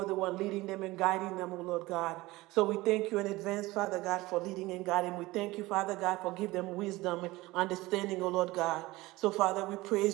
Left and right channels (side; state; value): left; quieter; 19.9 dB